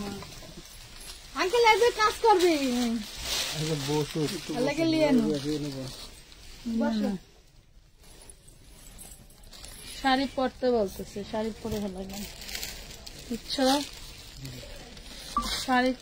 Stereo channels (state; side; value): identical; both; correlation 1.00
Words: আঙ্কেল এই যে কাজ করবি হ্যাঁ বসু লাগে লিয়ে নো শাড়ি পরতে বলতেছে শাড়ি পরে হলো বুঝছো শাড়ি